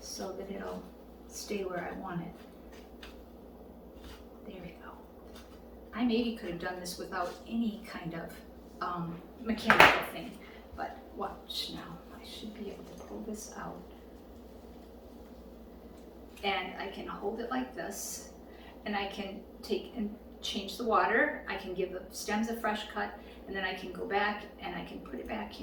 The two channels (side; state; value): both; identical; correlation 1.00